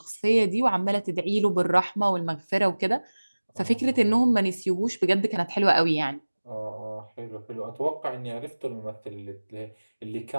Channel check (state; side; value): inverted; both; correlation -1.00